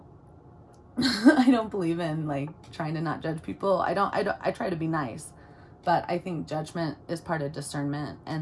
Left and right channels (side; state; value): both; identical; correlation 1.00